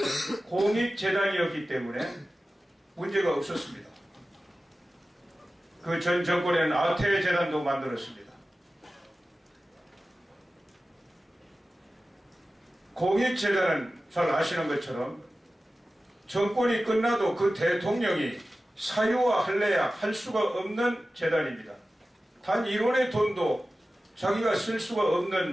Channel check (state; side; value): normal; both; correlation 0.95